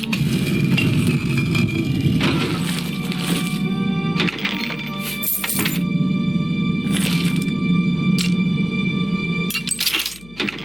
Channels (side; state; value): left; noise; hum, 22 dB below the sound